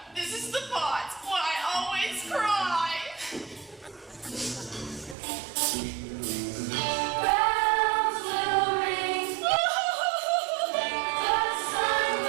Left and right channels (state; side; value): drops out; left; at 5.2 s